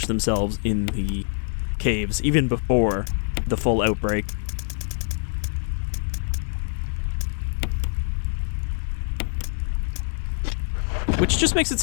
themselves in the caves, even before the full outbreak. Which just makes it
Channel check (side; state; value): right; silent; 62 dB below the other